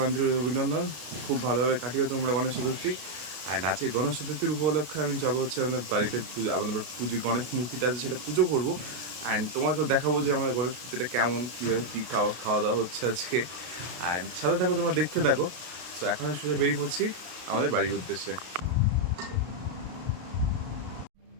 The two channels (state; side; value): late; left; 33 ms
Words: আন্তরিক অভিনন্দন। খুব ভালোভাবে কাটিও তোমরা গণেশ চতুর্থী। অ্যান্ড আজকে গণেশ চতুর্থীর উপলক্ষে আমি যাবো হচ্ছে আমাদের বাড়িতে আমাদের পুজো গণেশ মূর্তিটা আছে সেটা পুজো করবো। অ্যান্ড তোমাকেও দেখাবো যে আমাদের গণেশ মূর্তিটা কেমন, কীভাবে কী খাওয়া দাওয়া হচ্ছে আজকে। অ্যান্ড সাথে থাকো, তোমরা দেখতে থাকো। সো এখন আমি সোজা বেরিয়ে পড়ছি আমাদের বাড়ির উদ্দেশ্যে।